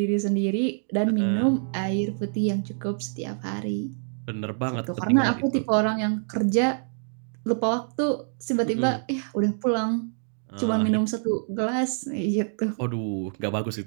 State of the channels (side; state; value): left; silent; digital silence